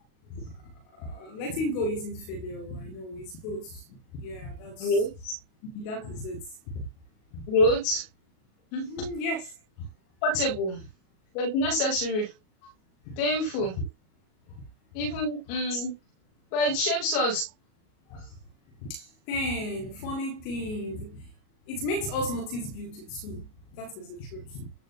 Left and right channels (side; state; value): right; late; 38 ms